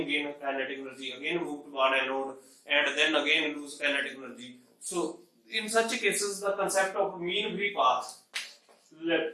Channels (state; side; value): identical; both; correlation 1.00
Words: gain kinetic energy, again move toward anode, and then again lose kinetic energy. So in such cases, the concept of mean free path,